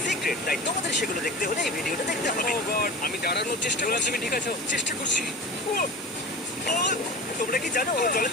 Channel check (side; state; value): both; normal; correlation 0.32